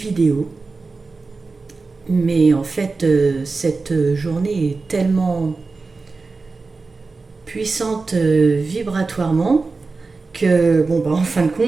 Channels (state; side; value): quieter; left; 4.0 dB